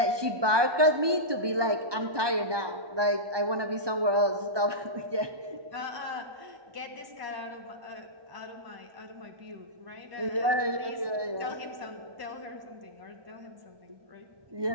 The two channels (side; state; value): left; late; 1.2 ms